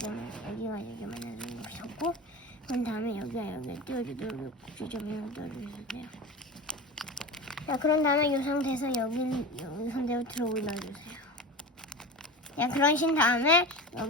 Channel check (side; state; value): both; normal; correlation 0.28